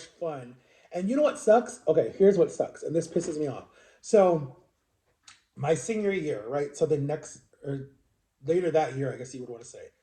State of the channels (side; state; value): both; identical; correlation 1.00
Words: fun. And you know what sucks? Okay, here's what sucks. And this pisses me off. So, my senior year, right? So, the next, or later that year, I guess you would want to say.